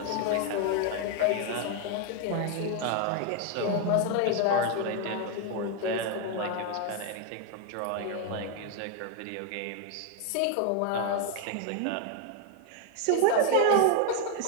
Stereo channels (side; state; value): both; different; correlation 0.00